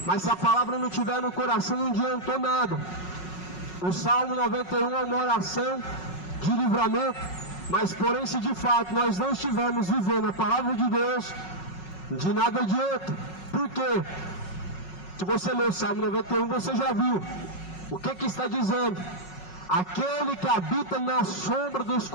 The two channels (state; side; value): late; right; 5.4 ms